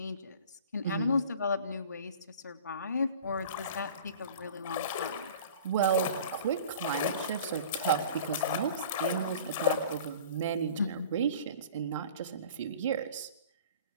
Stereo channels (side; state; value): both; inverted; correlation -0.43